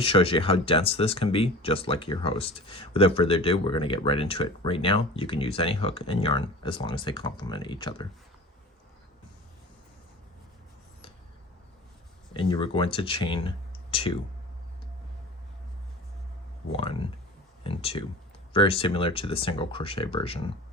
shows you how dense this can be, just like your host. Without further ado, we're going to get right into it. Right now, you can use any hook and yarn as long as they complement each other. And you are going to chain 2, 1 and 2, very similar to the single crochet version.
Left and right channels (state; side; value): normal; both; correlation 0.37